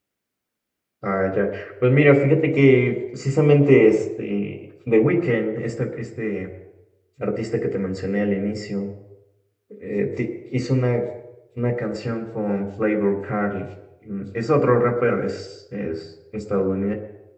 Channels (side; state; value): both; identical; correlation 1.00